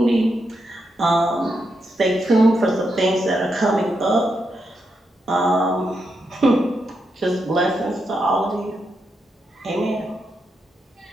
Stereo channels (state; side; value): normal; both; correlation 0.83